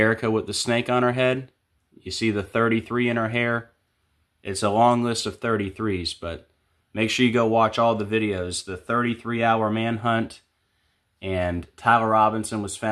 with the snake on her head? You see the 33 in her hair? It's a long list of 33s, but make sure you go watch all the videos. The 33-hour manhunt, and Tyler Robinson was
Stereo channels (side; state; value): both; identical; correlation 1.00